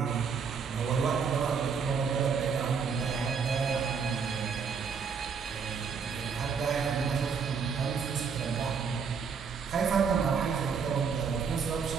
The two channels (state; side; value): quieter; left; 6.0 dB